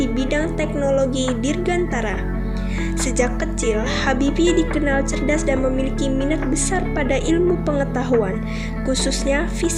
bidang teknologi dirgantara. Sejak kecil, Habibie dikenal cerdas dan memiliki minat besar pada ilmu pengetahuan, khususnya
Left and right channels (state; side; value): identical; both; correlation 1.00